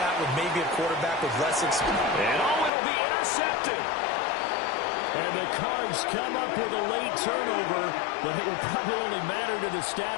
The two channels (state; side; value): drops out; right; at 2.7 s